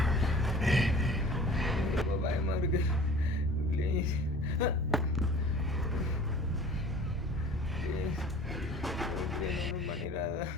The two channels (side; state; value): both; normal; correlation 0.45